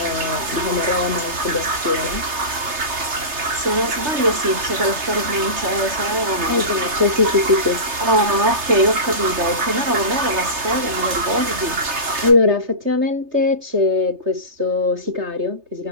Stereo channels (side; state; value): left; late; 3.3 ms